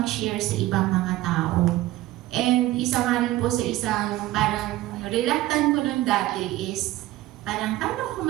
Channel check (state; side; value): quieter; left; 16.2 dB